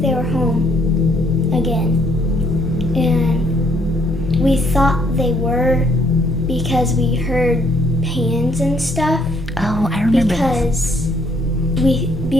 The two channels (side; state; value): both; normal; correlation 0.67